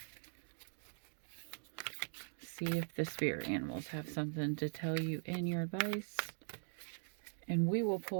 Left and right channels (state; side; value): silent; left; digital silence